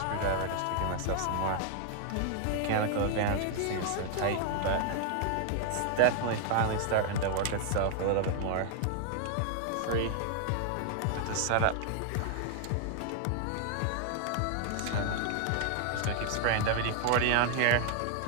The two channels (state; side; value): different; both; correlation 0.00